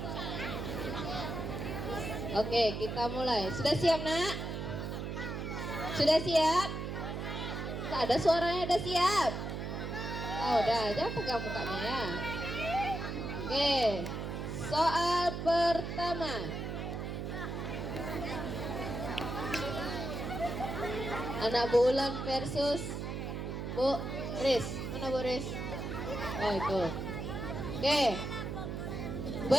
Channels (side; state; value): right; noise; hum, 4 dB below the sound